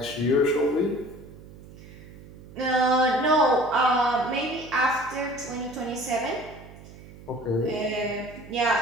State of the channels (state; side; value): noise; right; hum, 18 dB below the sound